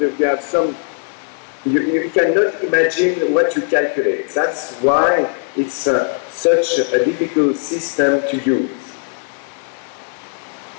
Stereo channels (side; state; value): right; silent; 61 dB below the other